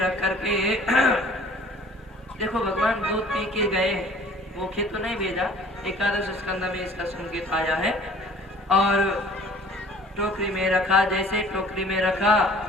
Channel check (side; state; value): both; normal; correlation 0.50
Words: रख करके देखो भगवान दूध पी के गए, भूखे तो नहीं भेजा। एकादश स्कंद में इसका संकेत आया है। और टोकरी में रखा, जैसे टोकरी में रखा